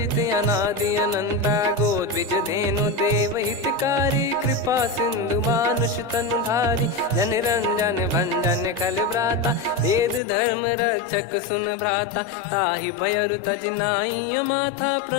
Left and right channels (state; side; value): drops out; right; at 10.2 s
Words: अनादि अनंता गोद्विज धेनु देव हितकारी कृपा सिंधु मानुष तनुधारी जन रंजन भंजन खल भ्राता वेद धर्म रक्षक सुन भ्राता ताहि भयर तज नाई माथा